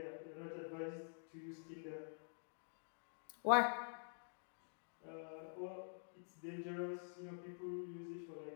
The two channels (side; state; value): right; silent; digital silence